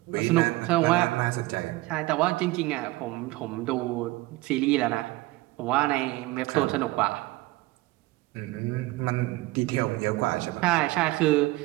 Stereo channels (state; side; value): quieter; left; 19.7 dB